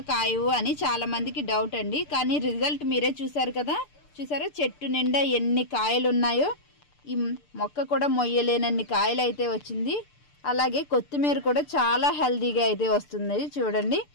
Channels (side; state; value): right; late; 6.8 ms